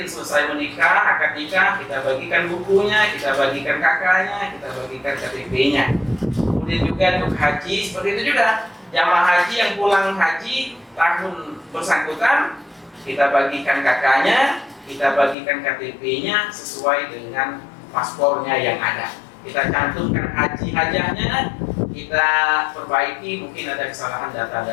selesai menikah, akad nikah, kita bagikan bukunya, kita bagikan kakaknya, kita bagikan KTP-nya. Kemudian juga Duk Haji, seperti itu juga. Jamaah haji yang pulang haji tahun bersangkutan, kita bagikan kakaknya, kita bagikan KTP-nya sesuai dengan paspornya yang ada. Kita cantumkan haji-hajahnya, kita perbaiki mungkin ada kesalahan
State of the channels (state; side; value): drops out; right; at 15.4 s